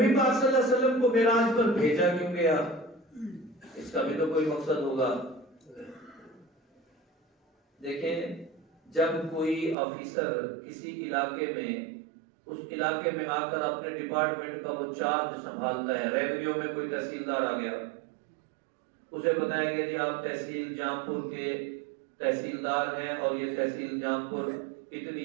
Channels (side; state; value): left; drops out; at 9.8 s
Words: پاک صلی اللہ علیہ وسلم کو معراج پر بھیجا کیوں گیا؟ اس کا بھی تو کوئی مقصد ہوگا۔ دیکھیں، جب کوئی آفیسر کسی علاقے میں، اس علاقے میں آ کر اپنے ڈپارٹمنٹ کا وہ چارج سنبھالتا ہے، ریونیو میں کوئی تحصیلدار آ گیا، اسے بتایا گیا جی آپ تحصیل جامپور کے تحصیلدار ہیں اور یہ تحصیل جامپور اتنی